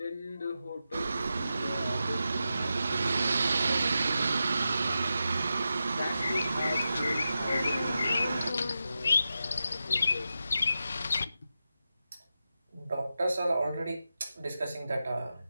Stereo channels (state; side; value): inverted; both; correlation -0.90